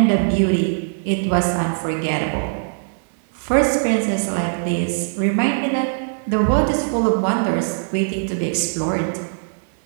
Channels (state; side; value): silent; left; digital silence